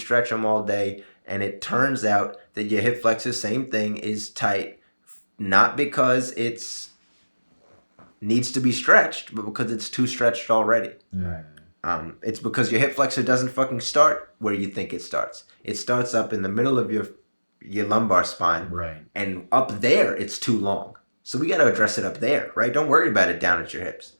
them all day, and it turns out that your hip flexor, same thing, is tight, not because it's needs to be stretched, but because it's too stretched already. Right. It's because your hip flexor doesn't fucking start where you think it starts. It starts up in the middle of your lumbar spine, Right. and up there it's too long. So we got to address it up there, right? Don't worry about it down at your hips.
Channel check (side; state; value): both; inverted; correlation -1.00